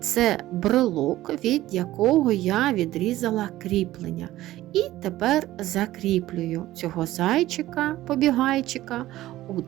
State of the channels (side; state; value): left; quieter; 15.6 dB